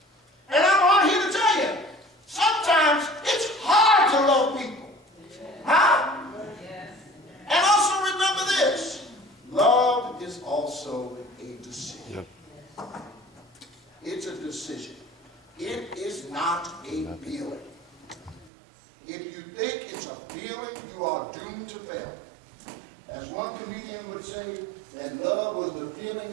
And I'm on here to tell you, sometimes it's hard to love people. Huh? And also remember this, love is also a decision. It's a decision. It is not a feeling. If you think it's a feeling, you are doomed to fail. As one comedian would say, that love was the feeling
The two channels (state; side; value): drops out; left; at 18.5 s